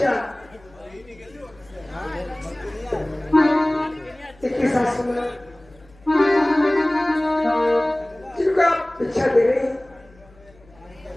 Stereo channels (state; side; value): noise; left; hum, 27 dB below the sound